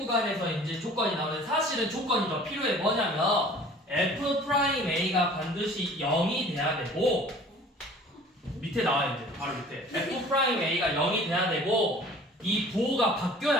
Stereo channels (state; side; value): normal; both; correlation 0.48